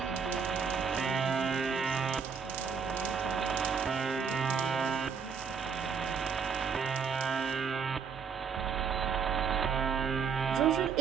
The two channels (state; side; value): quieter; left; 6.2 dB